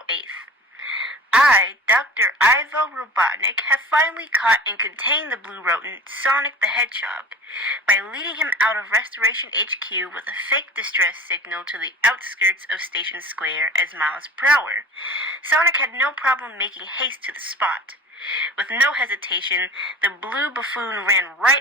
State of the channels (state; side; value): normal; both; correlation 0.39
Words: 8th. I, Dr. Ivo Robotnik, have finally caught and contained the blue rodent, Sonic the Hedgehog, by leading him out of Restoration HQ with a fake distress signal to the outskirts of Station Square as miles per hour. Sonic had no problem making haste to the spot. With no hesitation, the blue buffoon ran